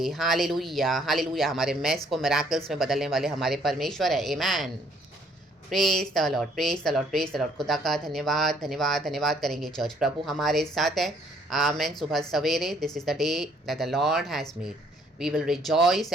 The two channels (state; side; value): normal; both; correlation 0.64